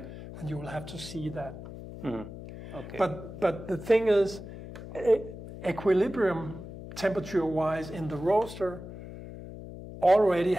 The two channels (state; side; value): noise; left; hum, 12 dB below the sound